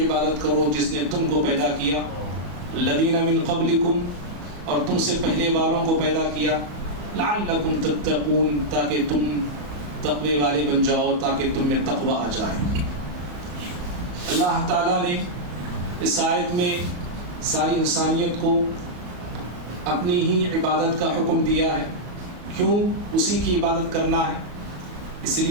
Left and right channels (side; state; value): left; late; 34 ms